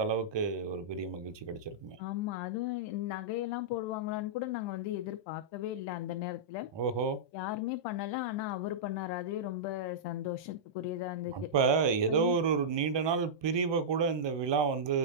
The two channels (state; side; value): late; left; 1.2 ms